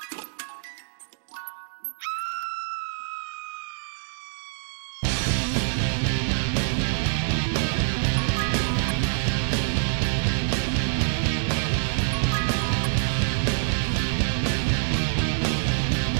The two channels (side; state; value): left; silent; digital silence